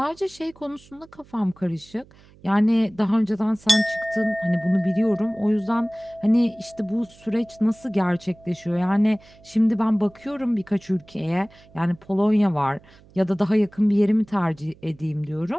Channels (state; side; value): noise; right; hum, 26 dB below the sound